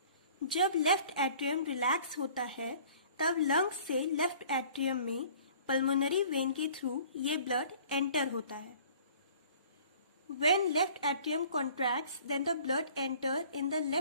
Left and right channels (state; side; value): inverted; both; correlation -0.50